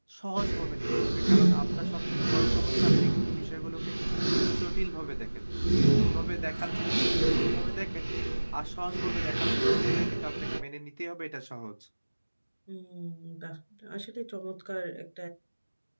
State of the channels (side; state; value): both; inverted; correlation -1.00